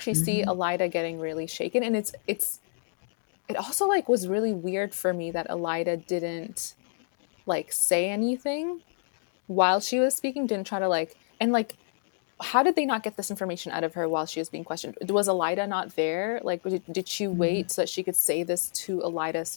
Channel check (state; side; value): silent; right; digital silence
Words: see Hmm. Elida getting really shaken. And it also like was really weird for me that Elida didn't like say anything while she was speaking. Didn't try to like and like how did they not get this information out of her while she was being questioned? Was Elida not there? Like, did she Hmm. wait so that she could say this to Elida's